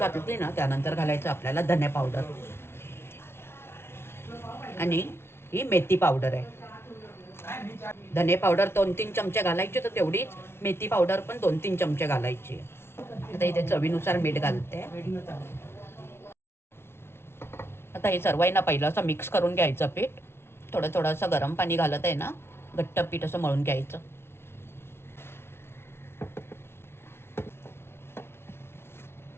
ना त्यानंतर घालायचं आपल्याला धने पावडर आणि ही मेथी पावडर आहे. धने पावडर 2-3 चमचे घालायचे, तर तेवढीच मेथी पावडर पण 2-3 चमचे घालायची. आता इथे चवीनुसार मीठ घालते. आता हे सर्व आहे ना पहिलं असं मिक्स करून घ्यायचं पीठ. थोडं थोडं असं गरम पाणी घालत आहे ना घट्ट पीठ असं मळून घ्यायचं.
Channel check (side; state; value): right; late; 0.12 ms